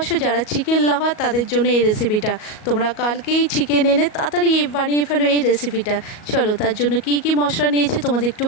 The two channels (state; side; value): late; right; 38 ms